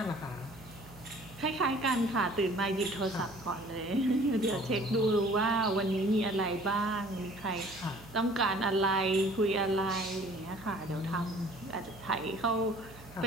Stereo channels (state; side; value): noise; right; hum, 20 dB below the sound